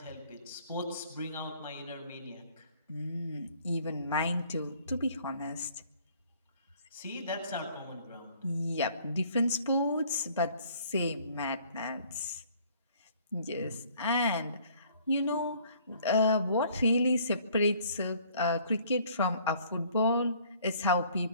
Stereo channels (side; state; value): both; inverted; correlation -0.58